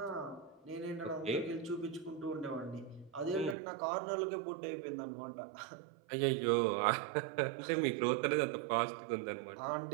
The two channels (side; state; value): left; drops out; at 3.6 s